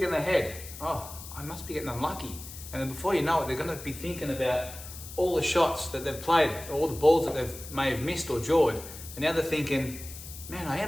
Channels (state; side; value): noise; left; hiss, 13 dB below the sound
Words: in their head, oh, I must be getting unlucky. And then before you know it, they're gonna be thinking about all the shots that they've played, all the balls that they may have missed or jawed. And now they're thinking, man, I